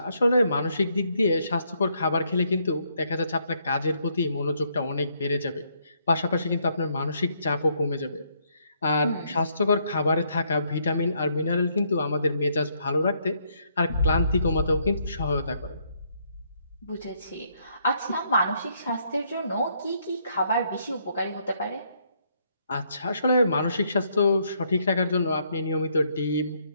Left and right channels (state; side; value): inverted; both; correlation -0.72